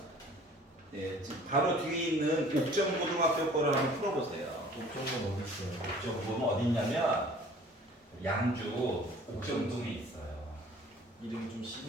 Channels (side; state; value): both; normal; correlation 0.50